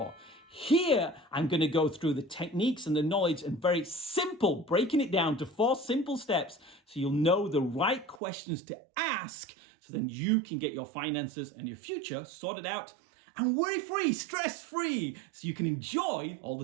Here, I'm going to go through the techniques and the knowledge and very simple, breaking it down to 4 simple steps so you'll know the right questions to ask, so then you can get your finances and your future sorted out and worry-free, stress-free, so you can enjoy all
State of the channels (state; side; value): drops out; left; at 8.2 s